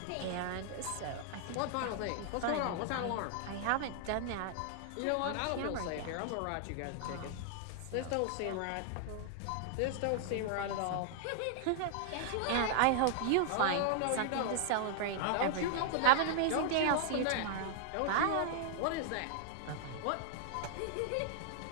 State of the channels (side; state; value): both; different; correlation -0.01